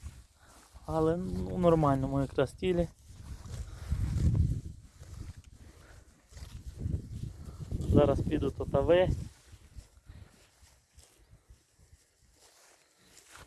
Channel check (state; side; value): identical; both; correlation 1.00